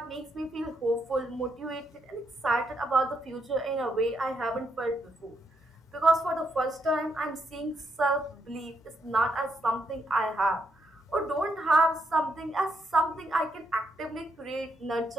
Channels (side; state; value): both; normal; correlation 0.78